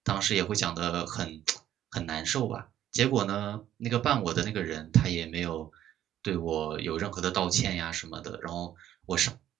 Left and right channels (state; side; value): quieter; left; 11.7 dB